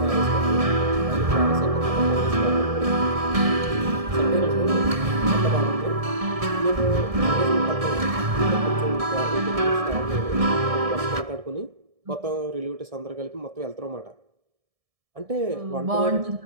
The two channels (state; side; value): late; left; 1.7 ms